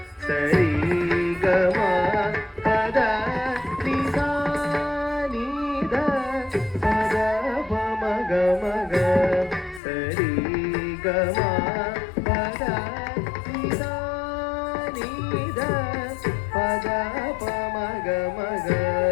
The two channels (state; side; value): drops out; right; at 9.8 s